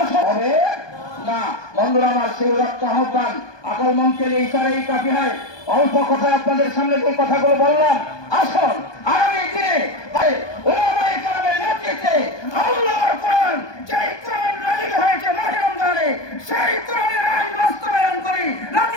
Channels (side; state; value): right; late; 1.2 ms